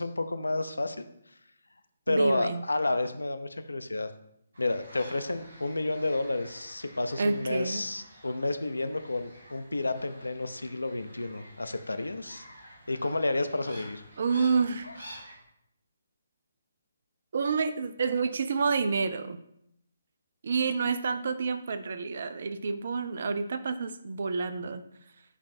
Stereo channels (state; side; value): inverted; both; correlation -0.87